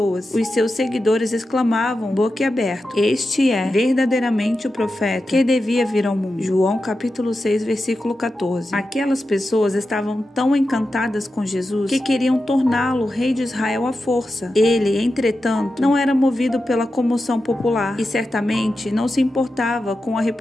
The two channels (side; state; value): both; normal; correlation 0.91